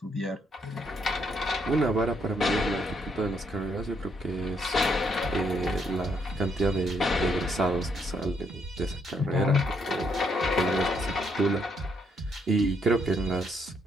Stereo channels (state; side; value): normal; both; correlation 0.73